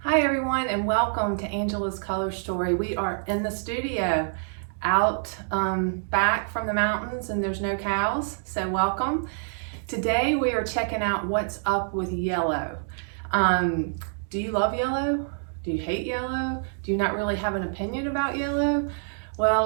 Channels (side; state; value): left; silent; digital silence